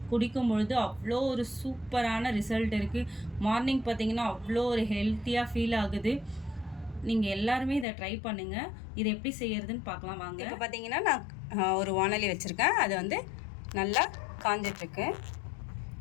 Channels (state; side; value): drops out; right; at 7.9 s